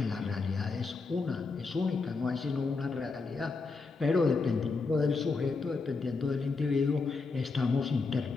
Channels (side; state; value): right; quieter; 4.2 dB